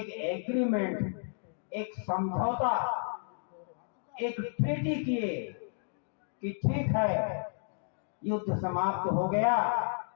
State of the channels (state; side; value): silent; right; digital silence